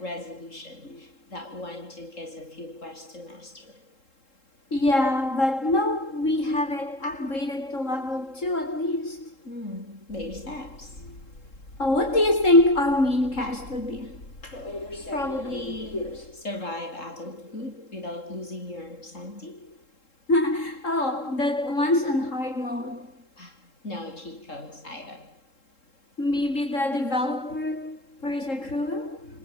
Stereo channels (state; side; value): late; right; 3.7 ms